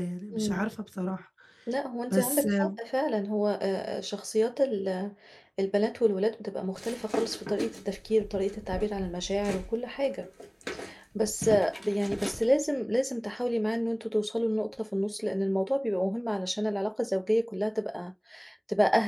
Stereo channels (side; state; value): both; identical; correlation 1.00